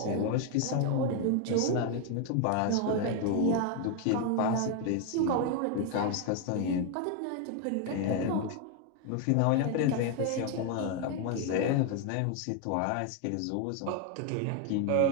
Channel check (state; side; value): different; both; correlation 0.01